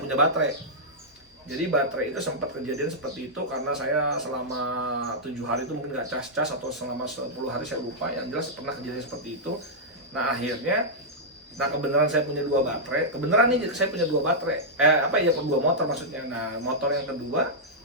baterai. Jadi baterai itu sempat kejadian seperti itu karena saya selama 7 hari itu mungkin nggak cas-cas, atau selama 10 hari saya lupa, yang jelas pernah kejadian seperti itu. Nah akhirnya, kebenaran saya punya 2 baterai, saya punya 2 baterai, 2 motor maksudnya. Nah motor yang kedua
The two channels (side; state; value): both; normal; correlation -0.09